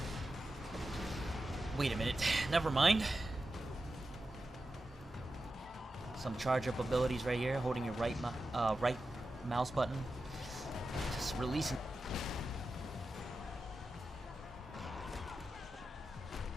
Wait a minute, never mind. Some charge-up abilities right here, holding your right mouse button. Just releasing...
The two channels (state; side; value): normal; both; correlation 0.91